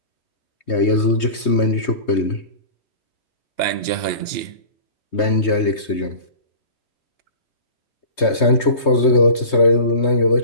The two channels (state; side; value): late; right; 3.2 ms